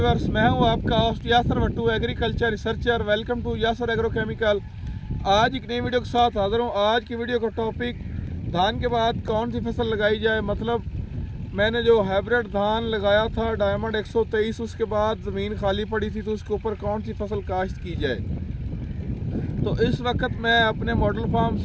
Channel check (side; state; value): both; identical; correlation 1.00